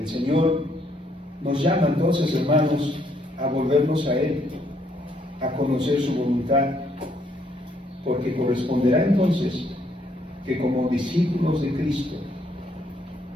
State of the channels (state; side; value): normal; both; correlation 0.70